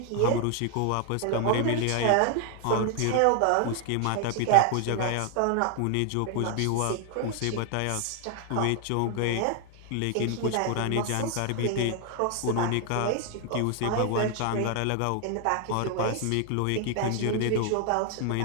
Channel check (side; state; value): both; different; correlation 0.00